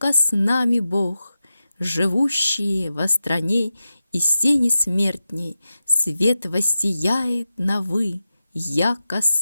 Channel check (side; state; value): both; inverted; correlation -0.92